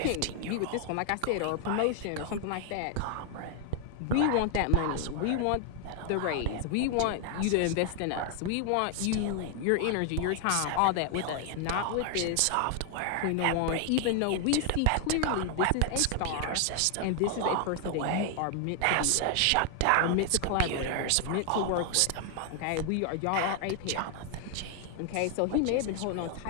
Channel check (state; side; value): different; both; correlation 0.00